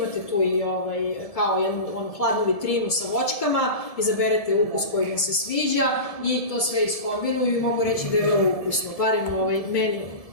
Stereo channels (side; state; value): right; late; 1.7 ms